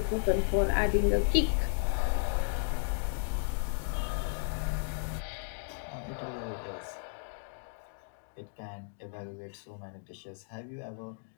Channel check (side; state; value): right; silent; digital silence